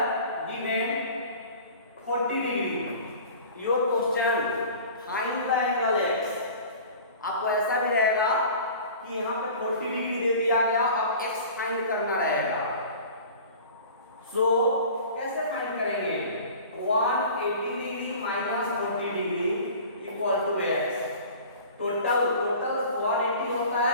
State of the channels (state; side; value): inverted; both; correlation -0.42